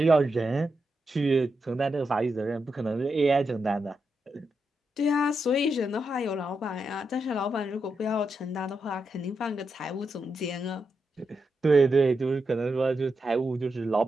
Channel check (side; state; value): both; normal; correlation 0.85